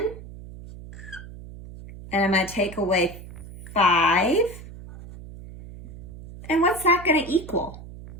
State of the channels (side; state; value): right; noise; hum, 15 dB below the sound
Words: and I'm going to take away 5. And what's that going to equal?